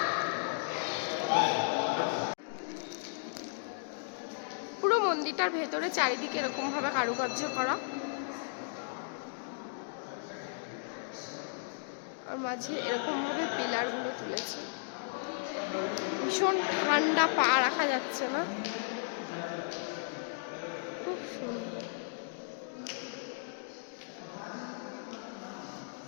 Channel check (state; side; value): silent; right; digital silence